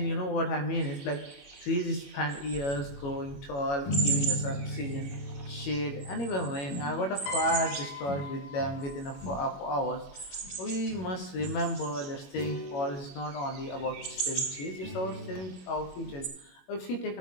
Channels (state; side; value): late; right; 21 ms